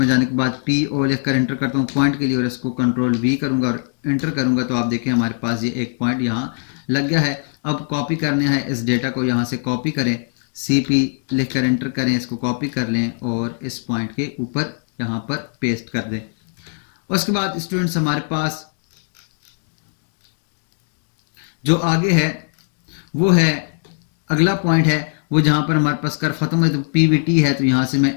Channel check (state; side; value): silent; right; 65 dB below the other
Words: जाने के बाद पी ओ लिख कर एंटर करता हूँ पॉइंट के लिए और इसको कंट्रोल वी करूँगा और एंटर करूँगा। तो आप देखें हमारे पास ये एक पॉइंट यहाँ लग गया है। अब कॉपी करने है इस डेटा को, यहाँ से कॉपी करें, सी पी लिख कर एंटर करें, इसको कॉपी कर लें और इस पॉइंट के ऊपर यहाँ पर पेस्ट कर दें। उसके बाद स्टूडेंट्स हमारे पास जो आगे है वो है अगला पॉइंट है वो जहाँ पर हमारे पास कर्व खत्म है। तो पीवीटी है। तो यहाँ से मैं